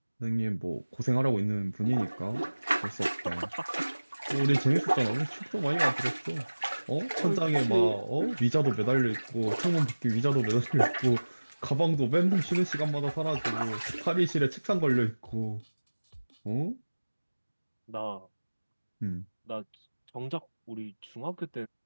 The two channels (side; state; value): both; inverted; correlation -1.00